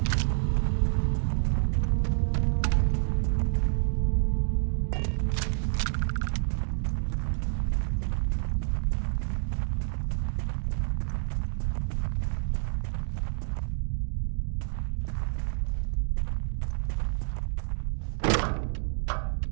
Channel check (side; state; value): left; silent; digital silence